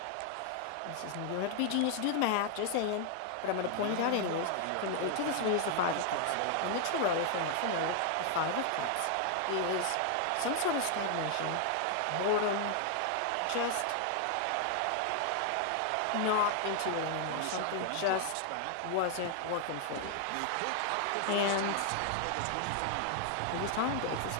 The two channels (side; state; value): both; different; correlation 0.00